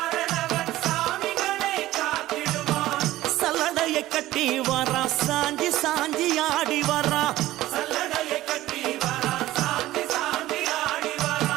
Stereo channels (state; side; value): quieter; left; 15.8 dB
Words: சல்லடையை கட்டி வரா சாஞ்சி சாஞ்சி ஆடி வரா.